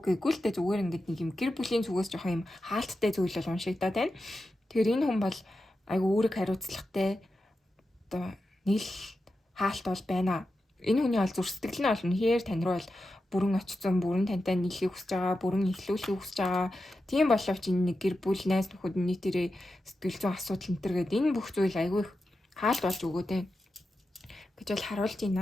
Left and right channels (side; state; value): both; normal; correlation 0.90